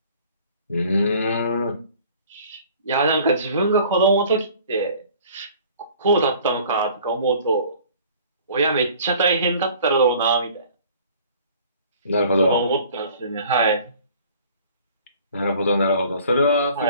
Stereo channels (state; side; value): inverted; both; correlation -0.51